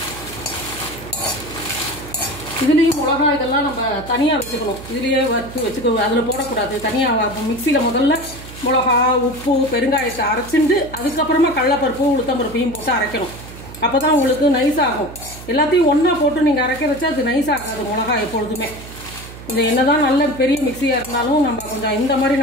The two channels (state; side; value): noise; right; hum, 15 dB below the sound